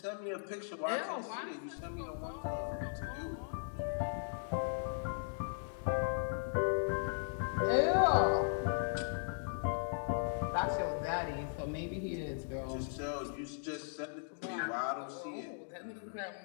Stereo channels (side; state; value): right; silent; digital silence